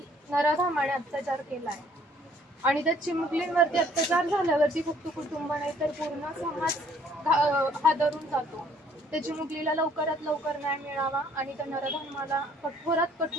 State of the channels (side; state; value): both; normal; correlation 0.61